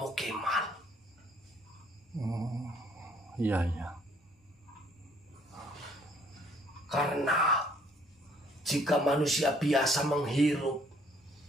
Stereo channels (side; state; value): both; normal; correlation 0.62